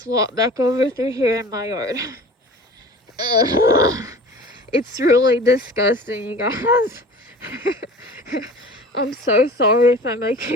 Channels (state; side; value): normal; both; correlation 0.41